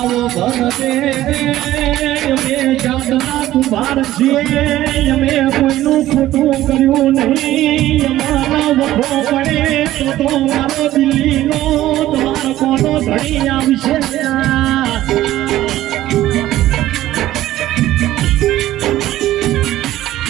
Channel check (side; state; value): left; quieter; 14.5 dB